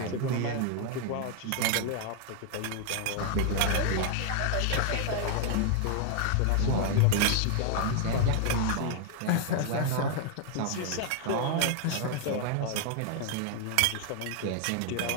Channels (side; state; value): both; different; correlation 0.00